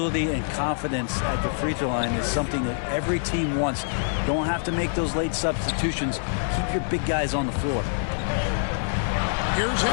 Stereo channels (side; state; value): right; silent; digital silence